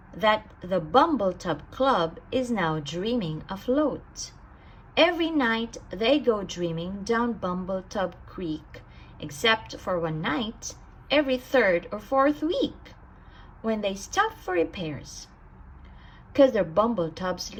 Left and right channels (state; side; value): identical; both; correlation 1.00